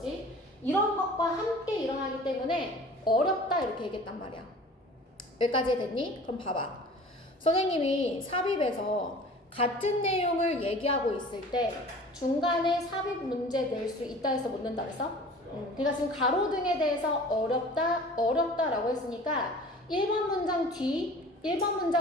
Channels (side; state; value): both; normal; correlation 0.44